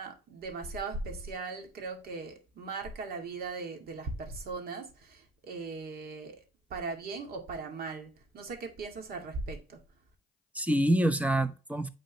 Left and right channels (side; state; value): both; normal; correlation 0.66